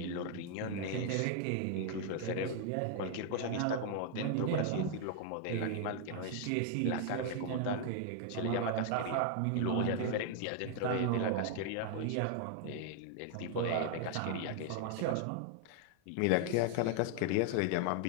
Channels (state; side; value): different; both; correlation 0.00